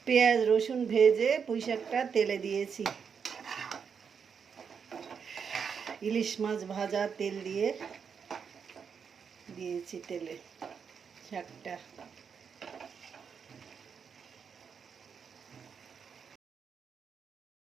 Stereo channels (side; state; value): left; quieter; 6.6 dB